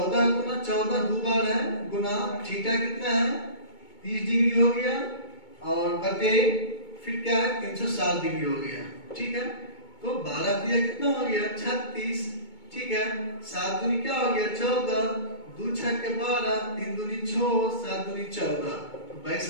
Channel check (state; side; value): late; right; 2.2 ms